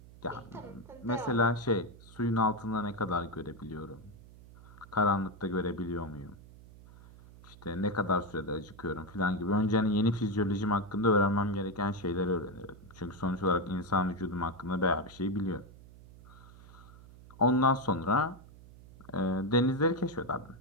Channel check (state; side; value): noise; right; hum, 20 dB below the sound